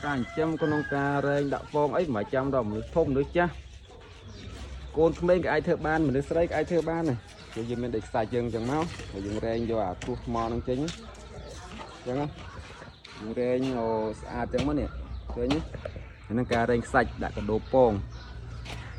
ការចិញ្ចឹមក្នុងការរែងដាក់ពងអីមិនចាំដល់មនុស្សធំមនុស្សចាស់កូនក្មេងក៏អាចធ្វើបានមនុស្សស្រីក៏អាចធ្វើបានដែរយើងមានដេកខ្សាច់យើងអញ្ចឹងមកហើយយើងរែងយកអាគ្រោះថ្មនឹងចេញអញ្ចឹងយើងរែងស្អាតអញ្ចឹងមកនេះឃើញហ្នឹងការរែងខ្សាច់ដាក់កដោពង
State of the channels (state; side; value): identical; both; correlation 1.00